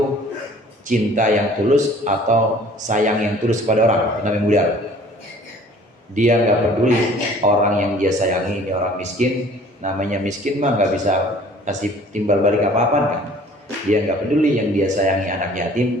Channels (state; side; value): normal; both; correlation 0.52